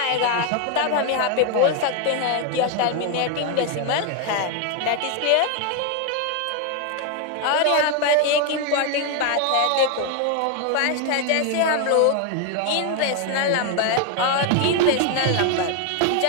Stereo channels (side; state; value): both; different; correlation 0.01